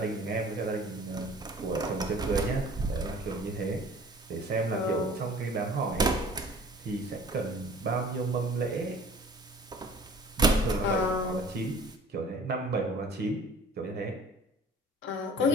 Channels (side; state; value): both; normal; correlation 0.48